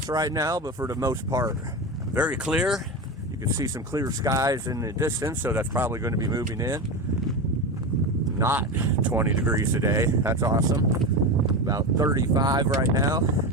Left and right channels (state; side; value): normal; both; correlation 0.21